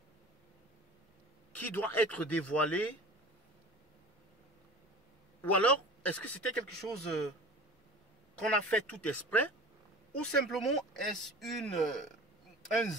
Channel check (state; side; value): normal; both; correlation 0.38